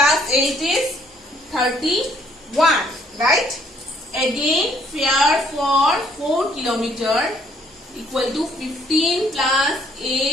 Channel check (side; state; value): both; normal; correlation 0.65